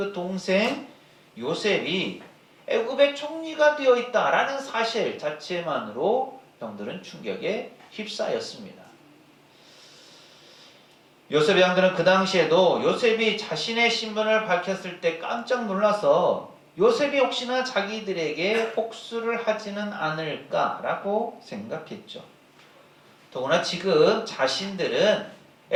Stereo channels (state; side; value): identical; both; correlation 1.00